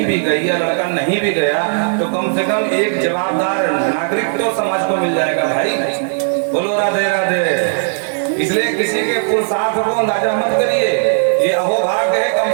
भी गई या लड़का नहीं भी गया, तो कम से कम एक जवाबदार नागरिक तो समाज को मिल जाएगा भाई। बोलो राधे राधे। इसलिए किसी के पुरुषार्थ को अंदाजा मत करिए, ये अहोभाग्य है।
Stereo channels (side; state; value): left; silent; digital silence